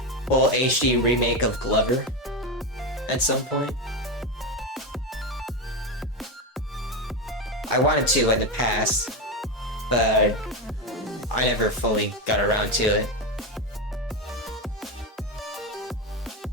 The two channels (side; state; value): both; normal; correlation 0.14